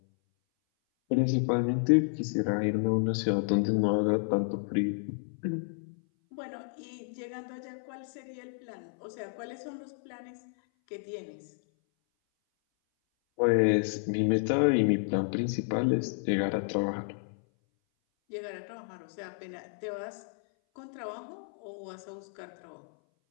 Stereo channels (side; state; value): right; silent; 57 dB below the other